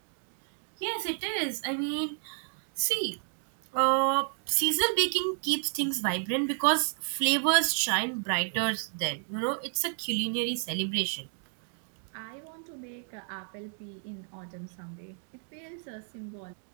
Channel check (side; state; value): left; silent; 57 dB below the other